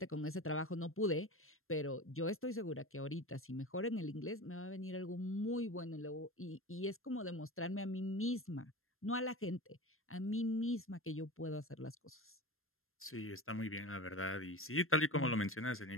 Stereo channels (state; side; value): late; right; 0.61 ms